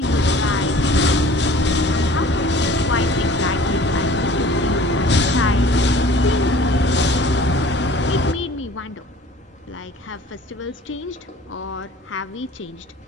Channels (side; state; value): both; normal; correlation 0.48